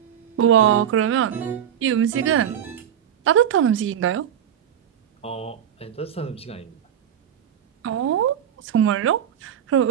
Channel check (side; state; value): left; quieter; 9.5 dB